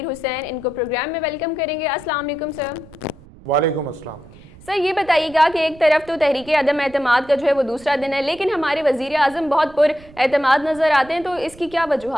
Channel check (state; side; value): noise; right; rumble, 21 dB below the sound